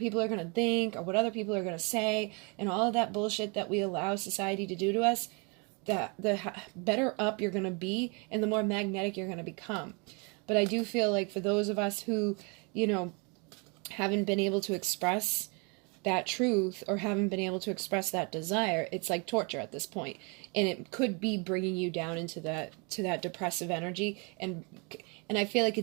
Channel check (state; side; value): quieter; left; 32.2 dB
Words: are going to think or what other people are going to say and all of that bullshit that we allow society to do to us, the better up you're going to be and the more magnetic you're going to become. But I do feel like for those of us who, haven't been able to express that truth or haven't been able to express that desire, it's like torture at this point. And it could be bringing you down into that depressive energy. And I feel like